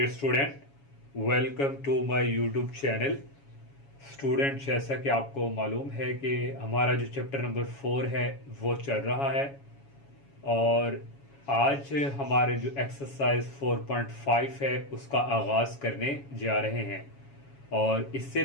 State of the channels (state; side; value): late; right; 7.2 ms